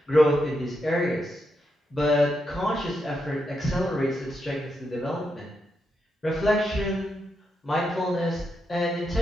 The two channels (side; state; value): both; normal; correlation 0.83